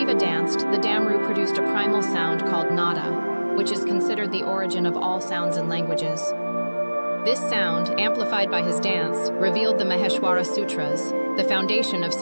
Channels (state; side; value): inverted; both; correlation -1.00